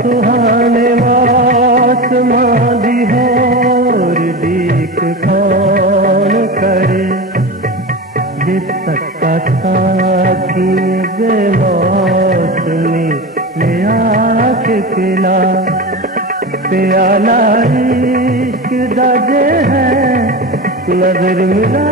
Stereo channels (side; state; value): both; normal; correlation 0.26